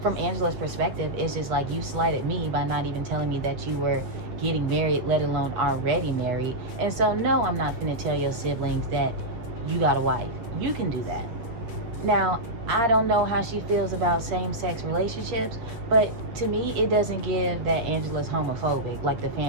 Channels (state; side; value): late; left; 8.5 ms